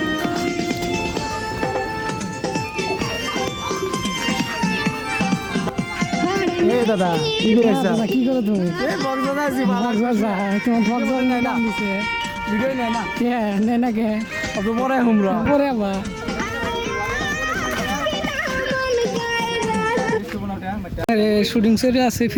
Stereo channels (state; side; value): identical; both; correlation 1.00